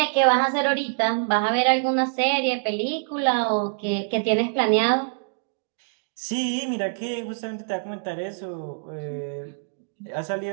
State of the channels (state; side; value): silent; left; digital silence